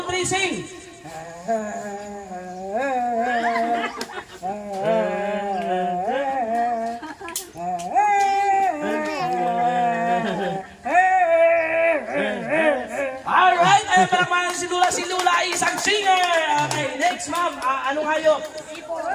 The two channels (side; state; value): both; identical; correlation 1.00